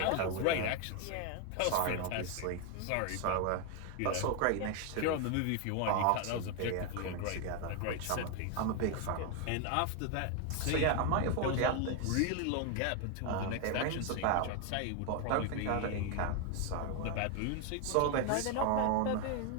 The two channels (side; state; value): both; different; correlation 0.01